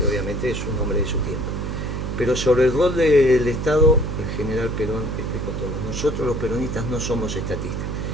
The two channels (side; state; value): right; noise; hum, 4 dB below the sound